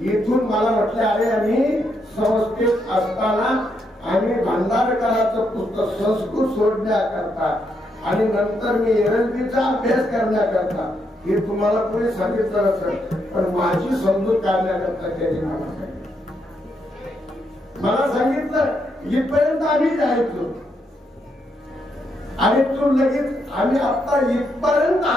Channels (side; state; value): both; normal; correlation 0.78